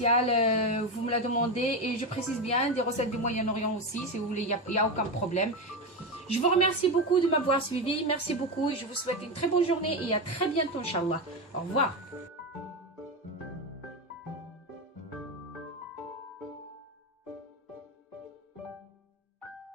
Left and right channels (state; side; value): normal; both; correlation 0.15